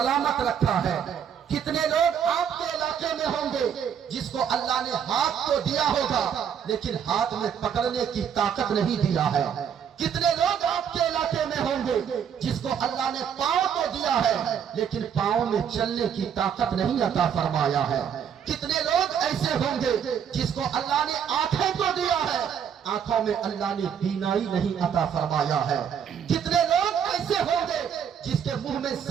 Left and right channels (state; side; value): quieter; left; 8.2 dB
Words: رکھا ہے۔ کتنے لوگ آپ کے علاقے میں ہوں گے جس کو اللہ نے ہاتھ تو دیا ہوگا لیکن ہاتھ میں پکڑنے کی طاقت نہیں دیا ہے۔ کتنے لوگ آپ کے علاقے میں ہوں گے جس کو اللہ نے پاؤں تو دیا ہے لیکن پاؤں میں چلنے کی طاقت نہیں عطا فرمایا ہے۔ کتنے لوگ ایسے ہوں گے جس کو اللہ نے آنکھیں تو دیا ہے، آنکھوں میں اللہ نے بینائی نہیں عطا فرمایا ہے۔ کتنے لوگ ایسے ہوں گے جس کے منہ میں